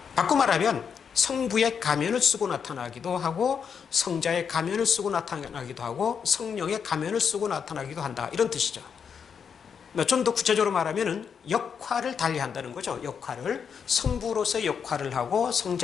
바꿔 말하면 성부의 가면을 쓰고 나타나기도 하고 성자의 가면을 쓰고 나타나기도 하고 성령의 가면을 쓰고 나타나기도 한다, 이런 뜻이죠. 좀 더 구체적으로 말하면 역할을 달리한다는 거죠. 역할을 성부로서의 역할을 하고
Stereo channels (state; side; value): quieter; right; 6.9 dB